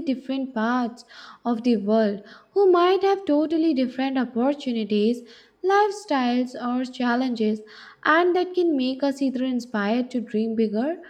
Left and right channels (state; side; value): identical; both; correlation 1.00